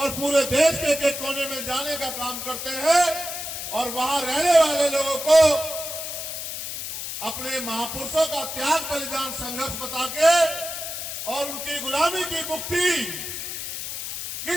पूरे देश के एक कोने में जाने का काम करते हैं और वहां रहने वाले लोगों को अपने महापुरुषों का त्याग, बलिदान, संघर्ष बता के और उनकी गुलामी की मुक्ति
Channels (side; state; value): left; noise; hiss, 6 dB below the sound